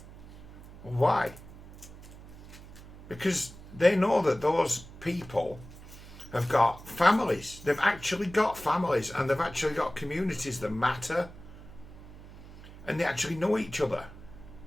why? Because they know that those people have got families. They've actually got families, and they've actually got communities that matter. And they actually know each other.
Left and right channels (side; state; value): right; noise; hum, 17 dB below the sound